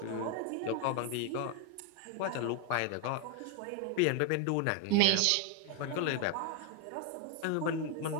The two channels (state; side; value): different; both; correlation 0.01